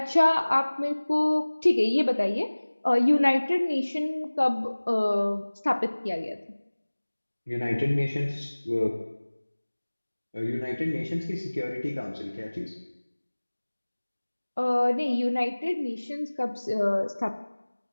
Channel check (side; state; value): both; inverted; correlation -1.00